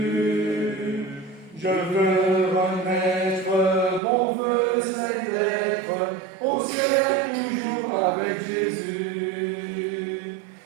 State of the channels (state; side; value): drops out; left; at 4.0 s